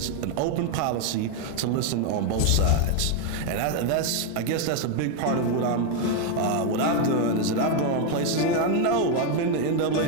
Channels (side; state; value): both; different; correlation 0.01